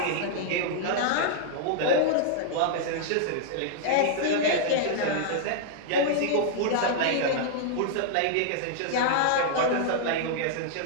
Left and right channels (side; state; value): both; different; correlation -0.01